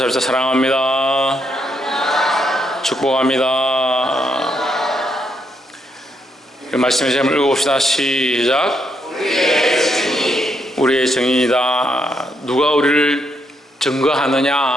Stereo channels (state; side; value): normal; both; correlation 0.77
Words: 사랑합니다. 축복합니다. 말씀의 제목을 읽어봅시다. 시작. 우리의 증인이다. 누가 우리를